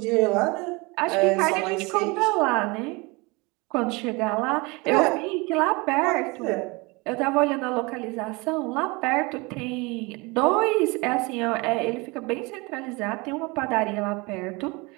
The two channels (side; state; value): left; quieter; 26.2 dB